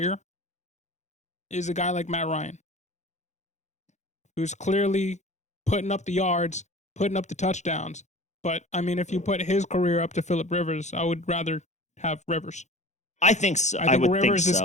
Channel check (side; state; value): right; late; 0.34 ms